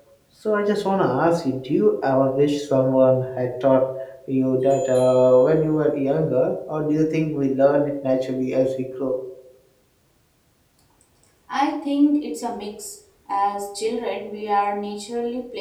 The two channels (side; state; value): both; identical; correlation 1.00